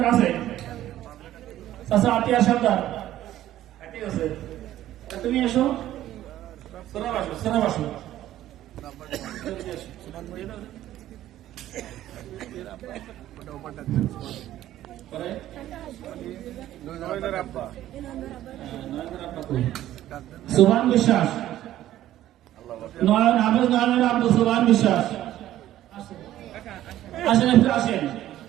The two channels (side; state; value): left; quieter; 13.3 dB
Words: আছে? চাচা আতিয়ার সর্দার ঠিক আছে, তুমি এসো। সোনা বাসু, সোনা বাসু সোহান বিশ্বাস, নয়ন হাফেজ, নয়নের আব্দু সোহান বিশ্বাস আসেন, একটু আসেন।